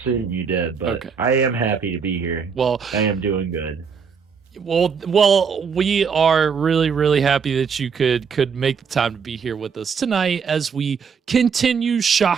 you did, but okay. I am happy to be here. Well, I am doing good. Well, we are really, really happy that you could make the time to be here with us tonight as we continue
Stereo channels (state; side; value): quieter; left; 6.1 dB